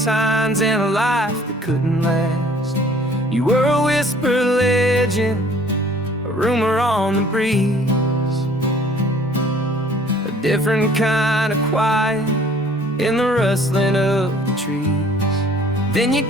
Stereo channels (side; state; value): both; normal; correlation 0.54